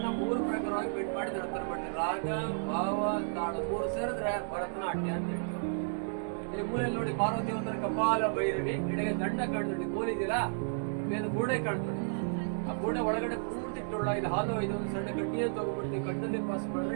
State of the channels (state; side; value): silent; left; digital silence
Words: 3 ಪ್ರಕಾರವಾಗಿ ಬೆಂಡ್ ಮಾಡಿ ನರ್ತನ ಮಾಡ್ತಾರೆ. ರಾಗ, ಭಾವ, ತಾಳ 3 ಸೇರಿದ್ರೆ ಭರತನಾಟ್ಯ ಅಂತ ಹೇಳಿ. ಇಲ್ಲಿ ಮೂಲೆಯಲ್ಲಿ ನೋಡಿ ಪಾರ್ವತಿ ಒಂಥರ ಕಪಾಲ ಭೈರವಿ, ಎಡೆಗೆ ದಂಡ ಕಾಣ್ತದೆ, ಕೋಲಿದಿಲ್ಲ ಮೇಲೆ ಗೂಡೆ ಕಾಣ್ತದೆ. ಆ ಗೂಡೆ ಒಳಗಡೆ ಪೂರ್ತಿ ಇದು ಹಾಲು, ಇದೊಂದು ಸಣ್ಣ ಕಡ್ಡಿಯನ್ನು ತಗೊಂಡ್ಬಿಡ್ತೀವಿ, ಕಣ್ಣಲ್ಲಿ ಪಾಸ್